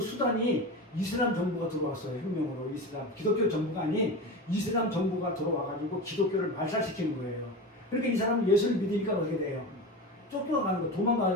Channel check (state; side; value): normal; both; correlation 0.26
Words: 이슬람 정부가 들어왔어요. 혁명으로 기독교 정부가 아닌 이슬람 정부가 들어와가지고 기독교를 말살시키는 거예요. 그러니까 이 사람은 예수를 믿으니까 어떻게 돼요? 쫓겨가는 거,